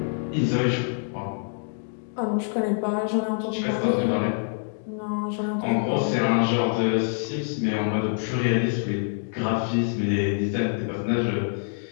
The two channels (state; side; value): silent; right; digital silence